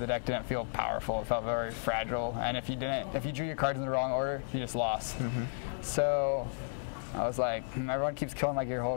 deck didn't feel powerful. It felt very fragile, and if you drew your cards in the wrong order, you just lost. Mm-hmm. So I was like, everyone keeps killing my Gear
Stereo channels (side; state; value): right; silent; digital silence